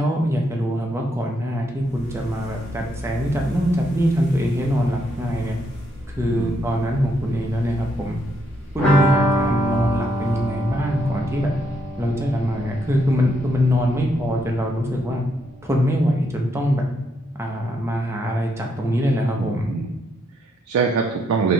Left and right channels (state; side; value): normal; both; correlation 0.76